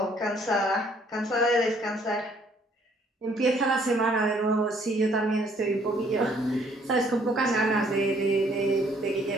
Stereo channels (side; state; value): both; normal; correlation 0.63